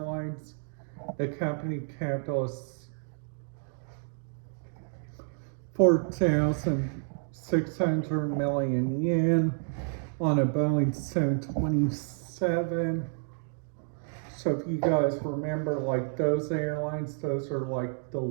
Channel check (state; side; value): silent; left; 58 dB below the other